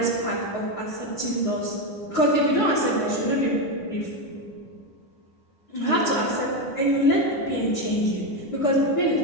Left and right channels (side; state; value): right; late; 10 ms